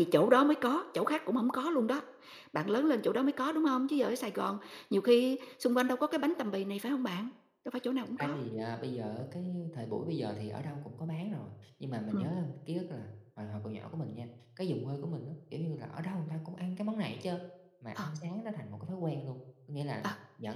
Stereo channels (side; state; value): both; identical; correlation 1.00